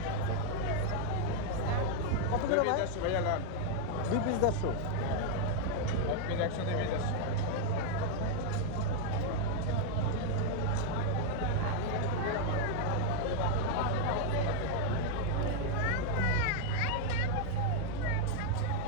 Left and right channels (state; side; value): different; both; correlation 0.00